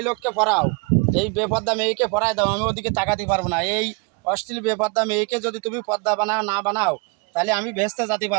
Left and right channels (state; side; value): quieter; left; 31.4 dB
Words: লোককে পড়াও, এই বেপর্দা মেয়েকে পড়ায় দাও, আমি ওদিকে তাকাতে পারবো না। এই অশ্লীল বেপর্দা মেয়েকে যদি তুমি পর্দা বানাও না বানাও, তাহলে আমি ভেস্তে যেতে